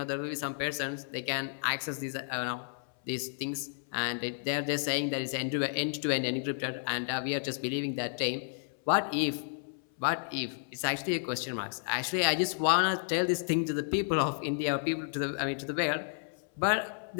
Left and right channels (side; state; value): right; silent; 57 dB below the other